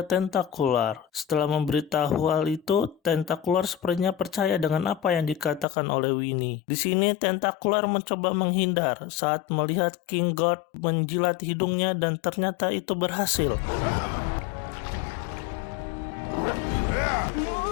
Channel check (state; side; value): drops out; right; at 5.7 s